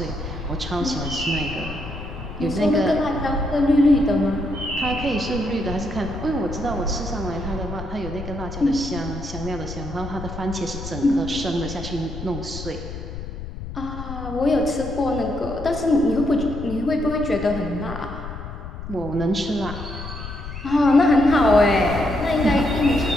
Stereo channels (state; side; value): noise; left; rumble, 9 dB below the sound